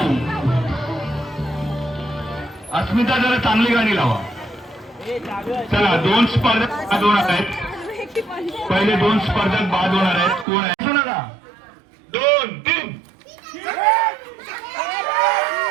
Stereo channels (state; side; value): drops out; left; at 10.5 s